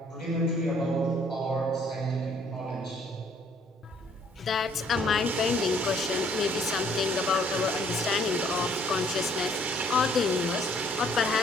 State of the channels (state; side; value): normal; both; correlation 0.62